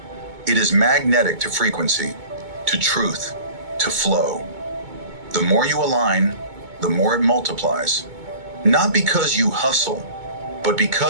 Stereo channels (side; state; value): left; late; 2.2 ms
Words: It is magnetic to frequency, to truth, to flow. The more you align, the more it multiplies. Not because you hustle, but